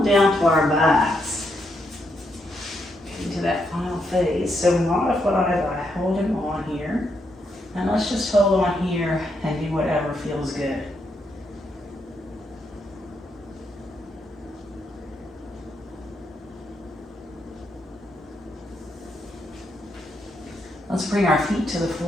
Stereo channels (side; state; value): both; normal; correlation 0.79